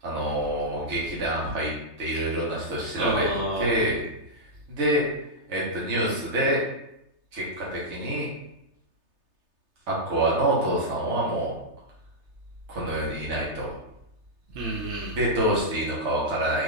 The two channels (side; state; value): left; late; 3.3 ms